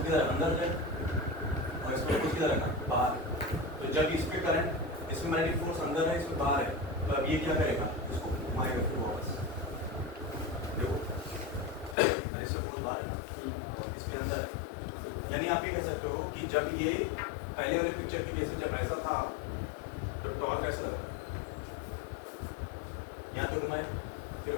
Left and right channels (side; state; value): right; drops out; at 12.0 s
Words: किधर अंदर है और इस पे फोर्स किधर है बाहर, तो जब इस पे करंट इसमें मैग्नेटिक फोर्स अंदर है इसमें बाहर है, तो अब ये क्या करेगा इसको घुमाएगा फिर वापस, देखो इससे फोर्स बाहर है ना इसके अंदर है, यानी आप ये कह सकते हो कि जब ये पहले वाले पिक्चर की जैसे जब ऐसा था तो टॉर्क ऐसा लगा यहाँ तो घुमाए फिर